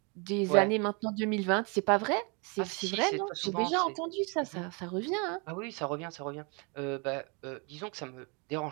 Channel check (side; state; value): left; quieter; 33.1 dB